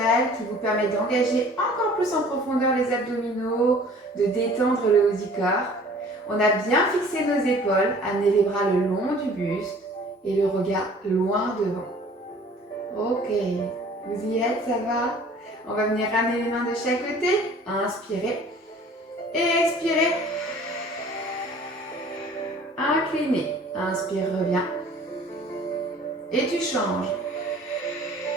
qui vous permet d'engager encore plus en profondeur les abdominaux, de détendre le haut du corps. On a bien fixé nos épaules, amenez les bras le long du buste et le regard loin devant. Ok, vous y êtes, ça va? On va venir ramener les mains de chaque côté. Inspirez et expirez. Inclinez. Inspire, reviens. Et tu changes.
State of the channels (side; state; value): both; normal; correlation 0.50